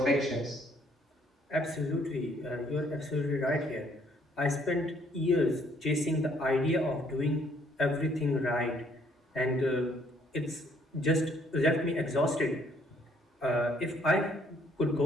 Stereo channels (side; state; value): both; normal; correlation 0.65